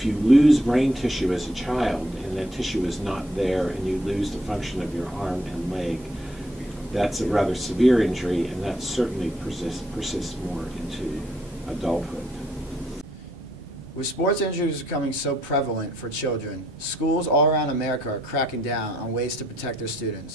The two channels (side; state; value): both; normal; correlation 0.70